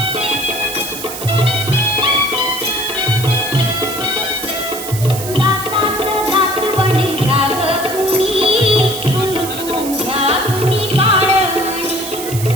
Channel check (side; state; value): right; noise; hiss, 9 dB below the sound